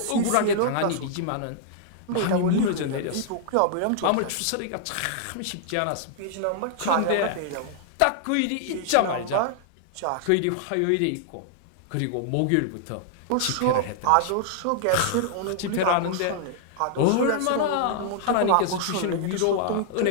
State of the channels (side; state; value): both; different; correlation -0.01